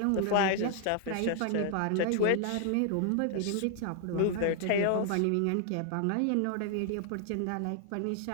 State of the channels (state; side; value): different; both; correlation 0.00